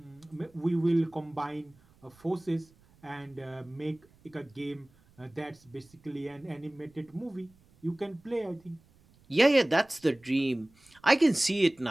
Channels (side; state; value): right; noise; rumble, 30 dB below the sound